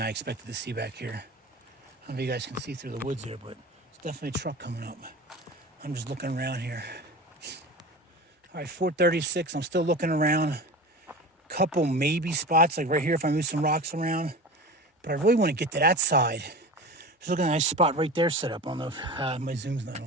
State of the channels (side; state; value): both; normal; correlation 0.32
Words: I expected to see back here. I don't know if you guys can see through the woods here, but it's definitely a truck coming up. I'm just looking around here. All right, 4:36, I'm still looking around. Couple maybe spots, like right here if I move some rocks around. But I really want to get to that side. Just looking at a nice spot right there set up. I don't know if my zoom's not